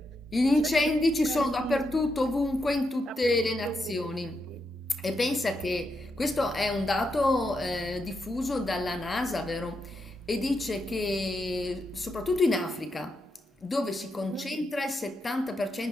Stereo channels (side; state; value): both; normal; correlation 0.83